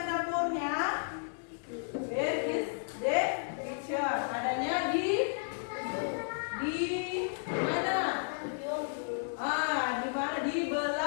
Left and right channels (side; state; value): right; silent; digital silence